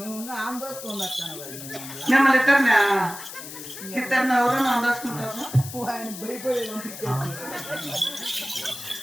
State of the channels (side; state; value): left; noise; hiss, 12 dB below the sound